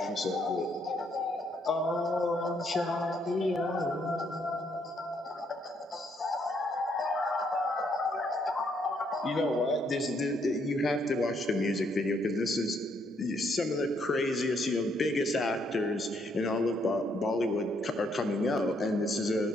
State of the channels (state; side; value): normal; both; correlation 0.72